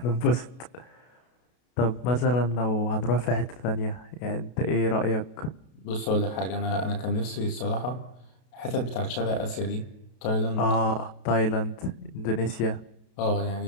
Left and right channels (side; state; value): right; late; 32 ms